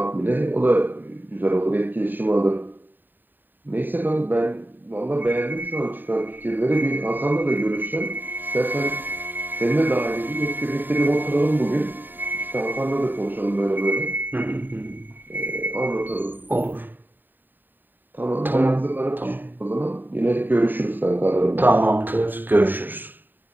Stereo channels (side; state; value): left; late; 0.091 ms